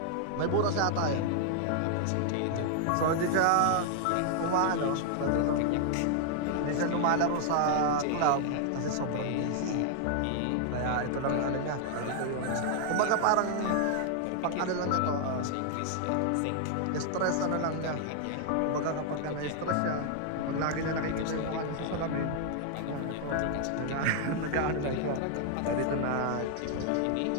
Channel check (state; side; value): different; both; correlation 0.00